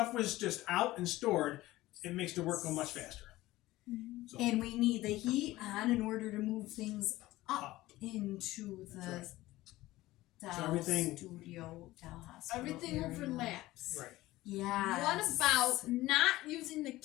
was just out and stored, it makes the work go much faster. So and we need the heat on in order to move things up up. into the That's Doll everything- studio, Doll Hospital Everything area. overlaps. Right. Yeah. What about not using the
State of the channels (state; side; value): quieter; right; 17.4 dB